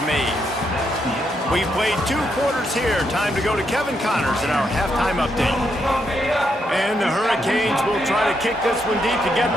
made. We've played 2 quarters here. Time to go to Kevin Connors in our halftime update. And the Hurricanes will try to kick this one deep to get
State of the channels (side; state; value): both; normal; correlation 0.79